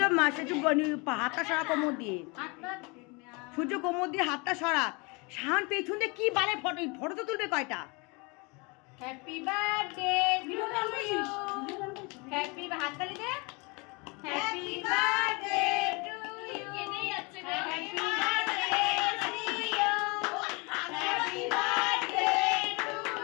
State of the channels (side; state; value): right; quieter; 28.9 dB